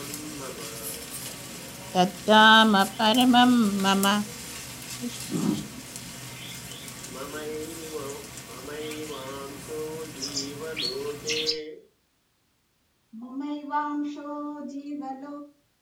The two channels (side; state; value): both; identical; correlation 1.00